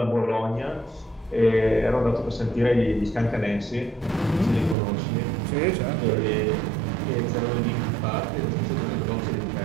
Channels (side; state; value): left; drops out; at 4.8 s